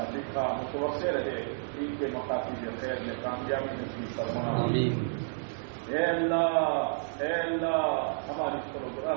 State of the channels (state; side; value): silent; left; digital silence